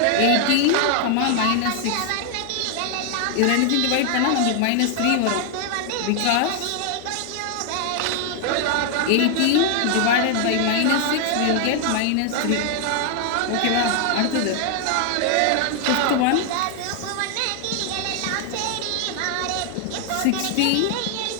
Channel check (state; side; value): different; both; correlation 0.00